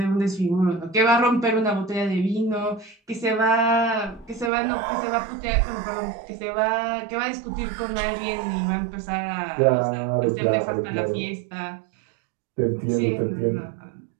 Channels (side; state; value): left; drops out; at 4.5 s